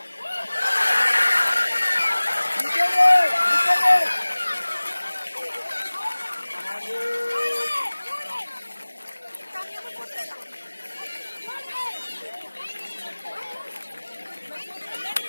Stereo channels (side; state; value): both; inverted; correlation -1.00